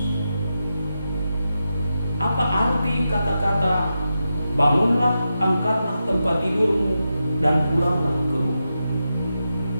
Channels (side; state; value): both; inverted; correlation -0.89